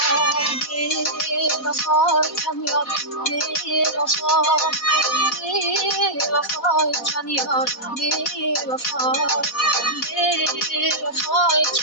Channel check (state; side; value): late; right; 4.1 ms